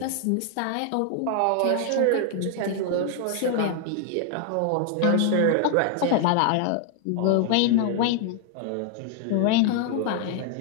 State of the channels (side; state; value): both; different; correlation 0.00